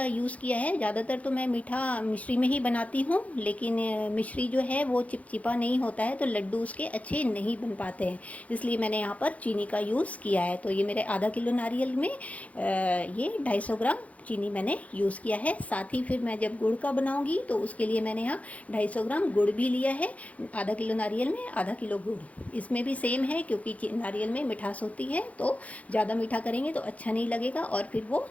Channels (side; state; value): right; late; 0.067 ms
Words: यूज़ किया है। ज़्यादातर तो मैं मीठा मिश्री में ही बनाती हूँ, लेकिन मिश्री जो है वो चिपचिपा नहीं होता है, तो लड्डू उसके अच्छे नहीं बन पाते हैं। इसलिए मैंने यहाँ पर चीनी का यूज़ किया है। तो ये मेरे आधा किलो नारियल में ये 250 ग्राम चीनी मैंने यूज़ किया है। साथ ही फिर मैं जब गुड़ का बनाऊंगी तो उसके लिए मैंने यहाँ 250 ग्राम गुड़ भी लिया है। आधा किलो नारियल में आधा किलो गुड़। इसमें भी सेम है, क्योंकि नारियल में मिठास होती है, तो ज़्यादा मीठा करेंगे तो अच्छा नहीं लगेगा और फिर वो